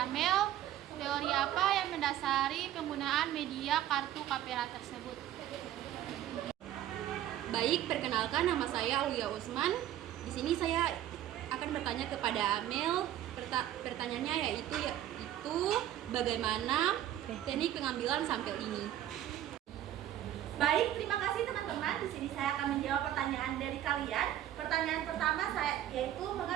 Amel, teori apa yang mendasari penggunaan media kartu Kapera tersebut? Baik, perkenalkan, nama saya Aulia Usman. Di sini saya akan bertanya kepada Amel. Pertanyaannya yaitu bagaimana teknik pengambilan sampel ini. Baik, terima kasih teman-teman. Di sini saya akan menjawab pertanyaan dari kalian. Pertanyaan pertama saya yaitu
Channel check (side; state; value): left; quieter; 12.2 dB